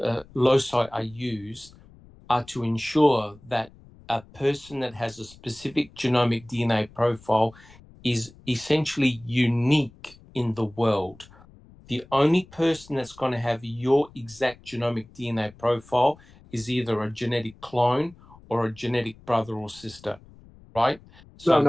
loci are used, are to ensure that a person that has a specific genomic DNA profile is essentially unique in the world. The only person that's going to have your exact genomic DNA profile is either a genetic clone or a genetic brother or sister, right? So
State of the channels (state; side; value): noise; left; rumble, 24 dB below the sound